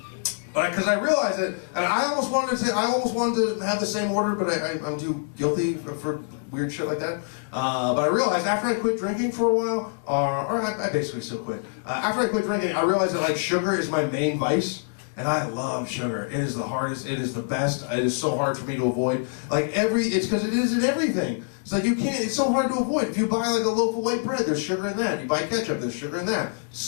because I realized it, and I almost wanted to have the same order, but I'm too guilty for weird shit like that. But I realized after I quit drinking for a while, or I basically still quit. After I quit drinking, I realized that like sugar is my main vice, and I love sugar. It is the hardest. It is the best. It is so hard for me to avoid. Like it's because it is in everything. It's like you can't. It's so hard to avoid. If you buy like a loaf of white bread, there's sugar in that. You buy ketchup, there's sugar in that. It's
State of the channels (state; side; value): silent; right; digital silence